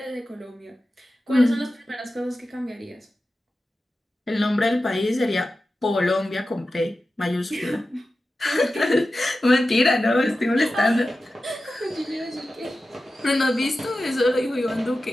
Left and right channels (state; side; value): normal; both; correlation 0.93